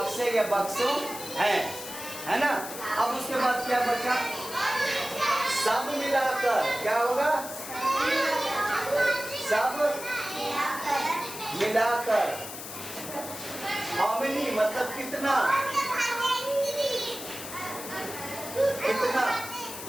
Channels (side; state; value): left; noise; hiss, 10 dB below the sound